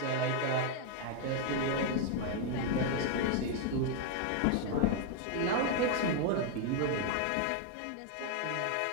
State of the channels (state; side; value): different; both; correlation 0.01